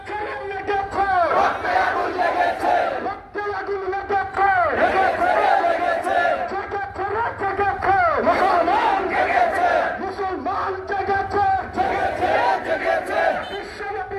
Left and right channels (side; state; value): both; identical; correlation 1.00